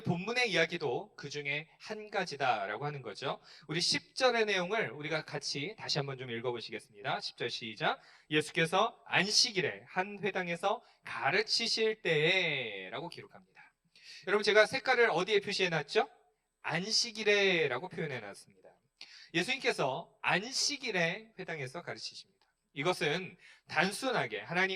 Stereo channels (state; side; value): identical; both; correlation 1.00